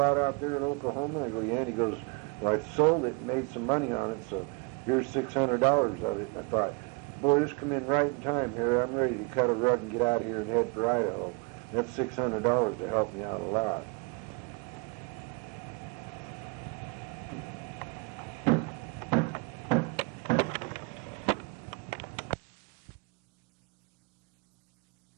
out there in Oklahoma? I go, yeah. And he goes, well, I sold it and made some money on it, so here's $600 of it. I thought, boy, this come in right in time here. I'm ready to cut a rug and get out of here and head for Idaho. That's $600 to help me out a lot.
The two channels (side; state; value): left; quieter; 30.7 dB